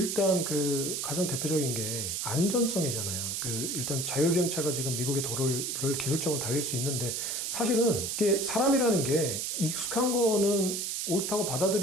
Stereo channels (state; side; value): noise; right; hiss, 2 dB below the sound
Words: 그 가장 대표적인 게 안전성이잖아요. 그 일단 자율주행차가 지금 미국의 도로를 기술적으로 달릴 수 있는데 사실은 이게 사람이라는 게 익숙한 거는 옳다고